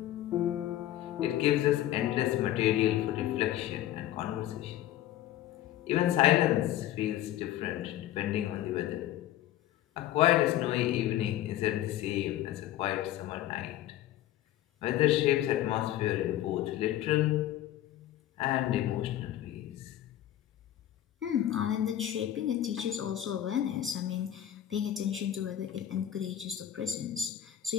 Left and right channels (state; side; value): quieter; right; 12.8 dB